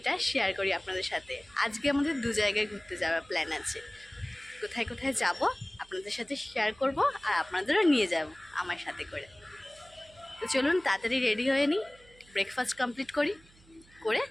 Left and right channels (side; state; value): right; noise; hum, 27 dB below the sound